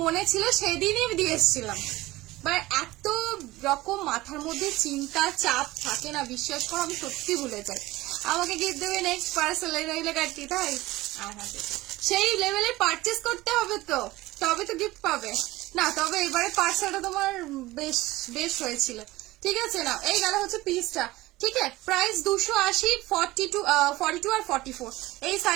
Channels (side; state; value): left; quieter; 18.6 dB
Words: মনে ছিল, সেদিনই দিয়ে এসেছিলাম। বাট এত রকম মাথার মধ্যে চিন্তা চাপ থাকে না, বিশ্বাস করো আমি সত্যি ভুলে যাই। আমাকে গিফট দেবে নেক্সট পার্সেল রইলে কাটতি, তাই সেই লেভেলে পারচেস করতে হবে তো, তবে তো গিফট পাবে না। তবে এবারে পার্সেলটা তোমার বেশ বেশ হয়েছিল, ঠিক আছে না। এই গেল হচ্ছে পিসটা, ঠিক আছে। প্রাইস 280, 42 আর 44 এই